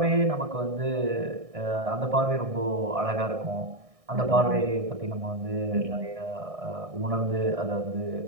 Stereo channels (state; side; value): late; left; 1.6 ms